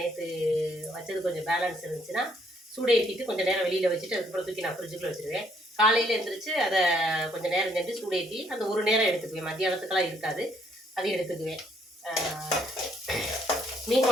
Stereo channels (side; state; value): both; normal; correlation 0.68